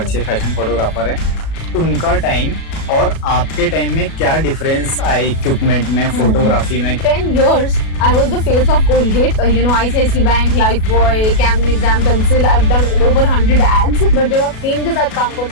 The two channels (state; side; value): late; right; 37 ms